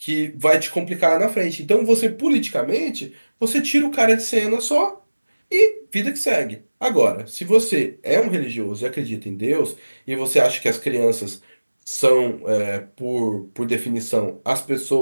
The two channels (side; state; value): both; inverted; correlation -1.00